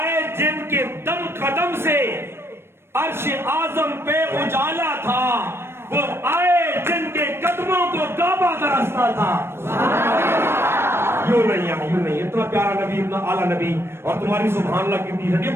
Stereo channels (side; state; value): left; late; 0.12 ms